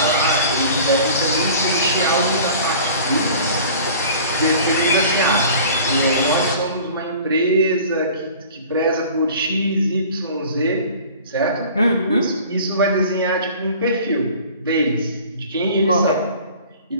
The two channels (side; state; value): both; inverted; correlation -0.45